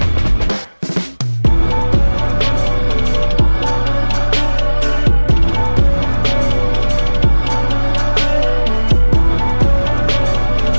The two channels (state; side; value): inverted; both; correlation -1.00